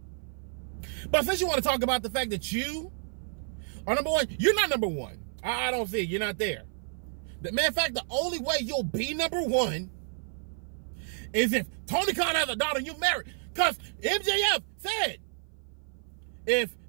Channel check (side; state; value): left; silent; 55 dB below the other